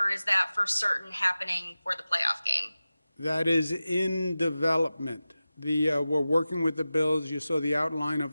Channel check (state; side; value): inverted; both; correlation -0.95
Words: is that for certain happening for the playoff game? That is in development. We're working with the Bills. You saw the outline